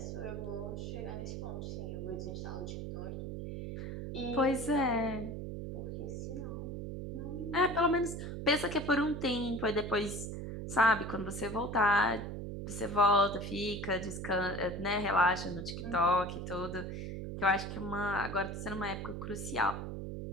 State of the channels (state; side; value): noise; right; hum, 6 dB below the sound